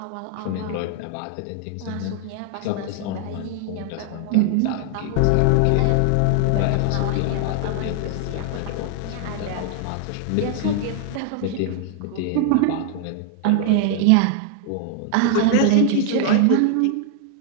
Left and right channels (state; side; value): different; both; correlation 0.00